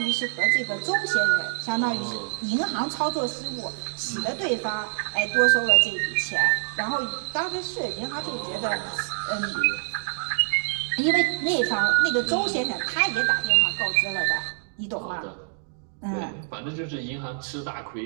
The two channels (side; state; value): left; silent; digital silence